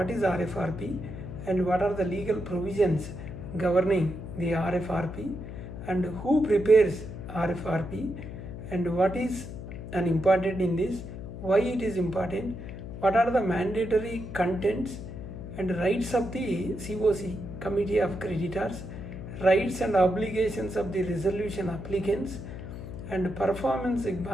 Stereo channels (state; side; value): noise; left; hum, 9 dB below the sound